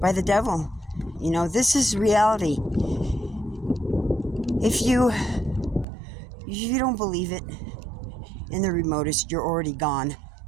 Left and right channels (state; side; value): drops out; left; at 5.9 s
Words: by the devil. You know, this is reality. If you don't believe it in the remotest, you're already gone.